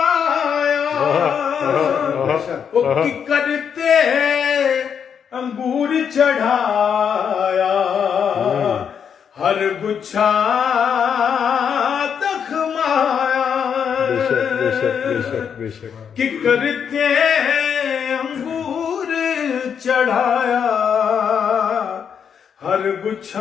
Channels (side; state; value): right; quieter; 7.5 dB